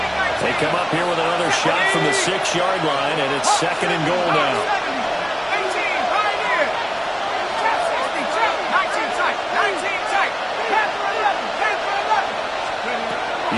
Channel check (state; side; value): identical; both; correlation 1.00